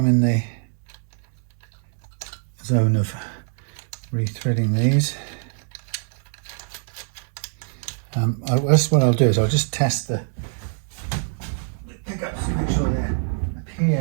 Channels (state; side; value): silent; left; digital silence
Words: in the zone of rethreading these. That's what I'll do, is I'll just test the pickups to make sure they